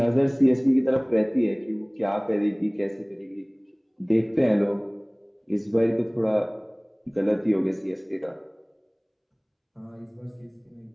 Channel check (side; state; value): both; identical; correlation 1.00